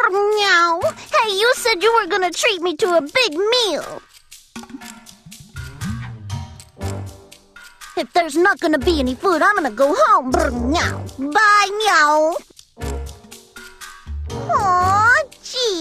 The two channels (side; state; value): both; identical; correlation 1.00